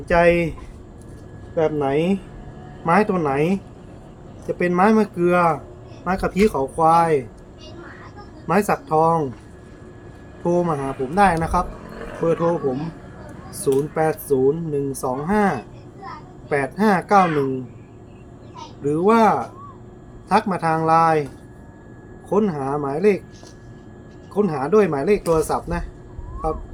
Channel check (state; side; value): identical; both; correlation 1.00